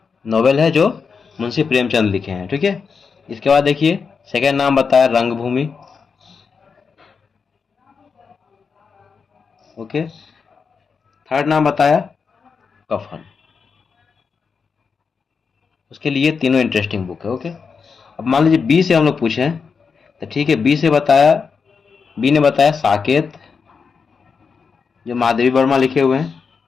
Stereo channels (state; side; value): quieter; right; 5.6 dB